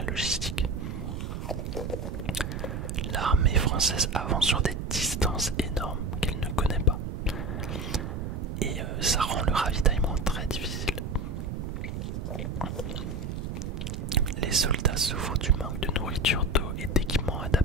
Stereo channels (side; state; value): right; noise; rumble, 5 dB below the sound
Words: logistique. L'armée française avance sur des distances énormes qu'elle ne connaît pas. Et ça rend le ravitaillement très difficile. Les soldats souffrent du manque de nourriture, d'eau et d'équipements